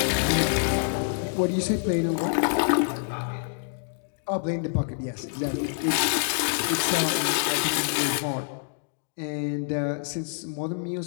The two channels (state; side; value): silent; right; digital silence